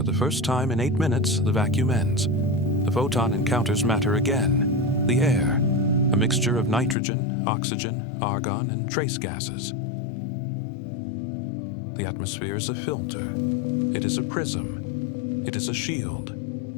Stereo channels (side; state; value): right; drops out; at 7.0 s